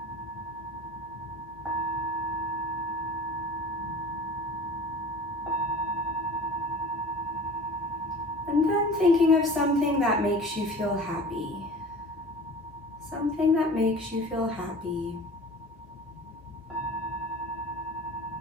And then thinking of something that makes you feel happy. Something that makes you feel happy.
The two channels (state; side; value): normal; both; correlation 0.40